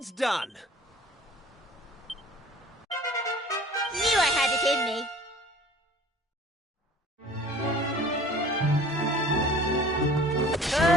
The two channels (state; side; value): normal; both; correlation 0.48